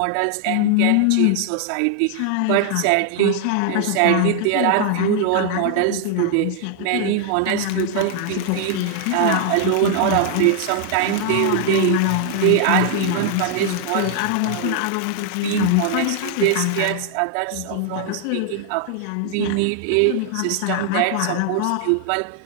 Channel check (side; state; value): both; different; correlation 0.00